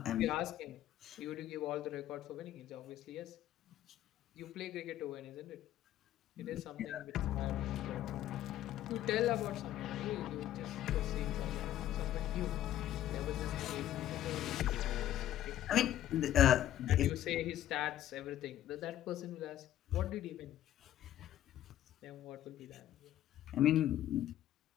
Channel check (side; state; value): right; quieter; 12.4 dB